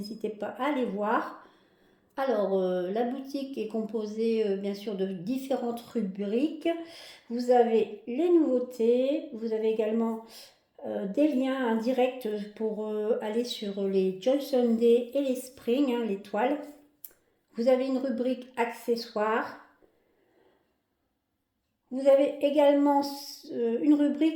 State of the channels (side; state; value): both; identical; correlation 1.00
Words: pas à les voir. Alors, la boutique est composée bien sûr de différentes rubriques. Vous avez les nouveautés, vous avez également des liens indirects pour aller sur les Joy Sunday et les Spring, les toiles. Vous avez une rubrique accessoires. Vous avez également une